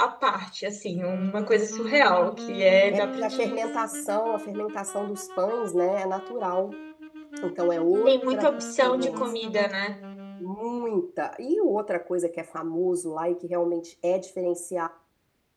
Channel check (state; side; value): identical; both; correlation 1.00